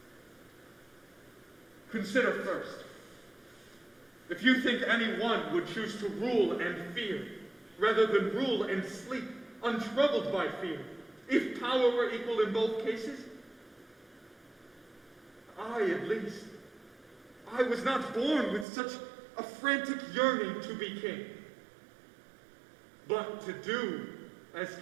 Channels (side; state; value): left; drops out; at 18.7 s